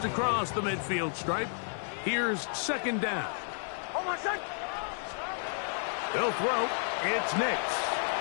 across the midfield stripe, here's second down. They'll throw. It's Nix.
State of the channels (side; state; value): right; silent; 57 dB below the other